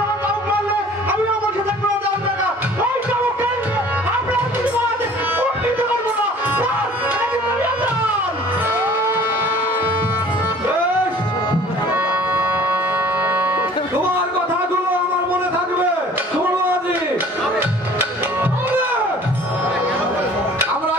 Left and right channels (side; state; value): both; normal; correlation 0.49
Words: আমার চাবুক মারলে আমিও বসে থাকবো না দাম টাকা। ওই চাবুক কেন্দ্রে আপনারা কিছু বাদ উন্নীত করবো না। এটা কিন্তু নিয়ন্ত্রণ। বেশ, তোমার কথাগুলো আমার মনে থাকবে। শোনো আজি, আমরা